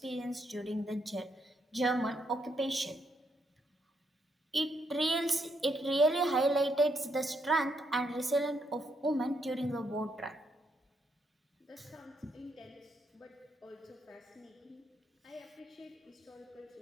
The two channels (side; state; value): both; normal; correlation 0.77